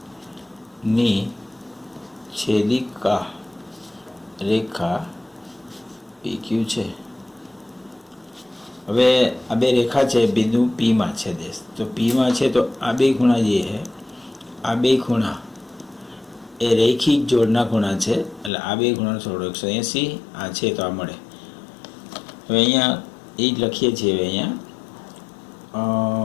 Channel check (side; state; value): right; drops out; at 18.5 s